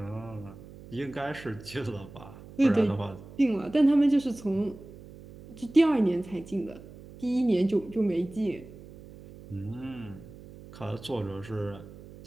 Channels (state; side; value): noise; right; hum, 18 dB below the sound